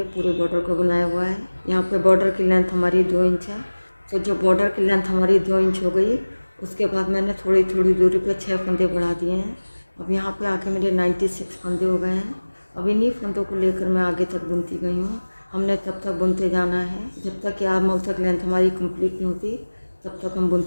पूरे बॉर्डर को बनाया हुआ है। यहाँ पे बॉर्डर की लेंथ हमारी 2 इंच है। तो जो बॉर्डर की लेंथ हमारी 2 इंच हो गई, उसके बाद मैंने थोड़ी थोड़ी दूरी पे 6 फंदे बढ़ा दिए हैं। अब यहाँ पे आके मेरे 96 फंदे हो गए हैं। अब इन्हीं फंदों को लेकर मैं आगे तक बुनती गई हूँ। हमने तब तक बुनते जाना है जब तक कि आर्म होल तक लेंथ हमारी कंप्लीट नहीं होती, तब तक हम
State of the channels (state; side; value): inverted; both; correlation -1.00